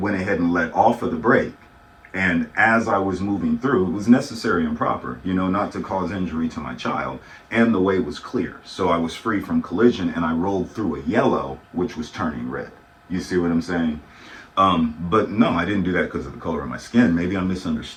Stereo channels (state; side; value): identical; both; correlation 1.00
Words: ahead and let off of the brake. And as I was moving through, it was necessary and proper, not to cause injury to my child. And the way was clear. So I was free from collision, and I rolled through a yellow, which was turning red. You see what I'm saying? But no, I didn't do that because of the color of my skin. Maybe I'm